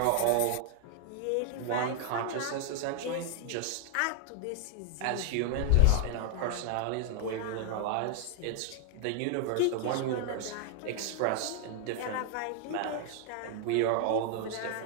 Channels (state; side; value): different; both; correlation 0.00